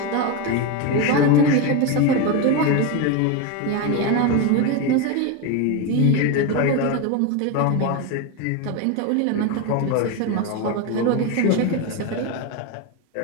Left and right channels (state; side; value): different; both; correlation 0.03